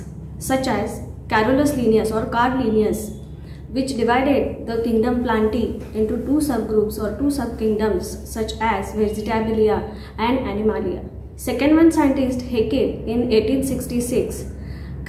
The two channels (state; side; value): identical; both; correlation 1.00